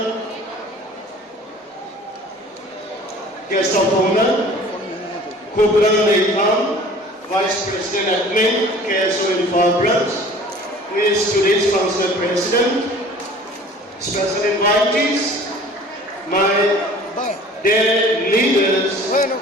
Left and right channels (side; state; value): both; normal; correlation 0.47